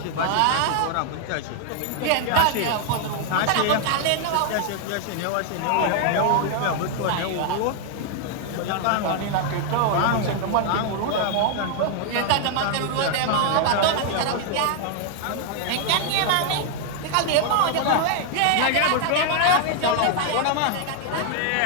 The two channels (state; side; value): different; both; correlation 0.00